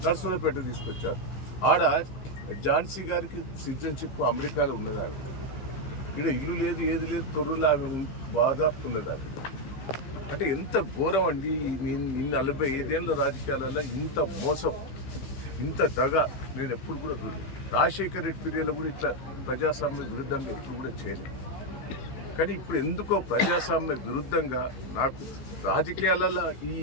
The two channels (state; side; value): late; right; 15 ms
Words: నర్సులపేట తీసుకొచ్చారు. ఆడ ఝాన్సీ గారికి సిటిజన్షిప్ అమెరికాలో ఉన్నది. ఆమె ఇక్కడ ఇల్లు లేదు, ఏది లేదు, తొర్రూరులో ఆమె బాధాపు ఉన్నది. ఆమె అంటే ఎంత ఘోరం అండి. 45 ఏళ్ళ రాజకీయాలలో ఇంత మోసం, ఇంత దగ నేను ఎప్పుడు కూడా చూడలేదు. రాజశేఖర రెడ్డి పీరియడ్లో కూడా ఇట్లా ప్రజాస్వామ్య విరుద్ధంగా ఎప్పుడు కూడా చేయలేదు. కానీ ఇప్పుడు ఎందుకో ప్రజాస్వామ్య విరుద్ధంగా నాకు రాజకీయాలలో